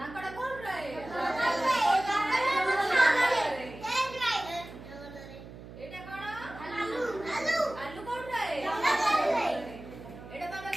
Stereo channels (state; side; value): noise; right; hum, 15 dB below the sound